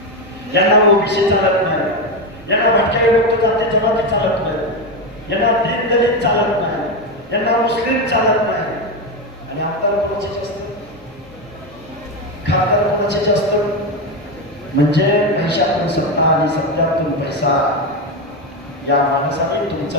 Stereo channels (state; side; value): normal; both; correlation 0.12